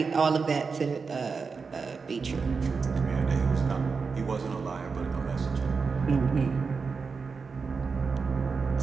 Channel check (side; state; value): left; quieter; 5.0 dB